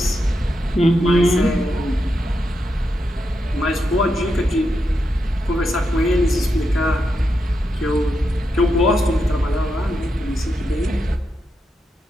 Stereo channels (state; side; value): normal; both; correlation 0.85